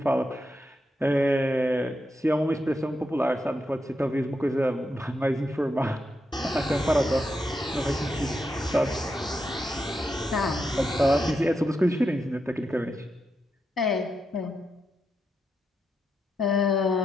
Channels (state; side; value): normal; both; correlation 0.84